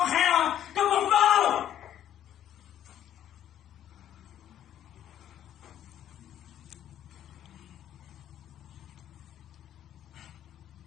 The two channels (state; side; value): quieter; right; 10.9 dB